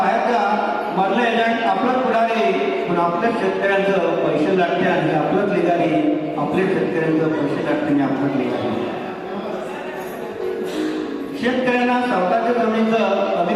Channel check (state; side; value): identical; both; correlation 1.00